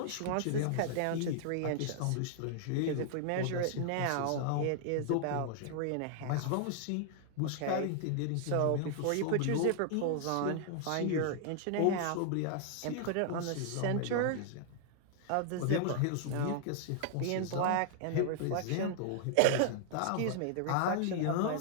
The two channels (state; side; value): different; both; correlation -0.01